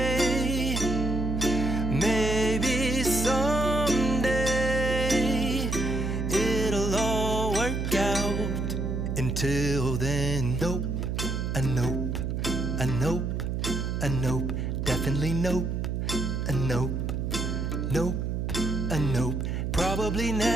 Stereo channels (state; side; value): noise; right; hum, 1 dB below the sound